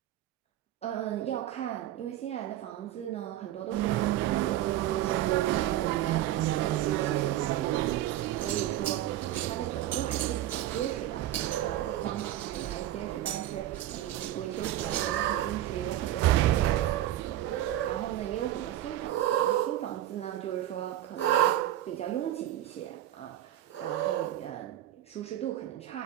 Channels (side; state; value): left; quieter; 13.2 dB